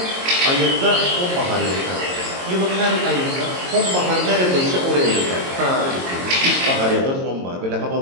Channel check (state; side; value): late; left; 22 ms